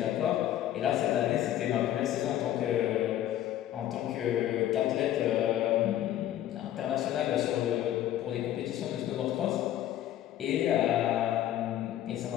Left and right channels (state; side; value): quieter; right; 12.3 dB